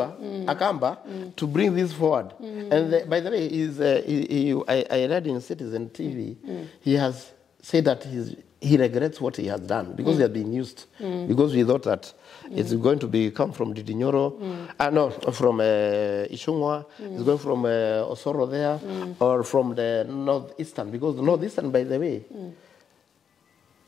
Akamba, to bring this forward. And by the way, I read in Citizen TV, he has said that he regrets what he has done because he has been used. Because we thought that it's going to come from Didi Nyoro, from Ishungwa, it's going from Osoro there, or from the Northeastern. Because the Northeastern, by the way,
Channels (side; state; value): right; quieter; 7.6 dB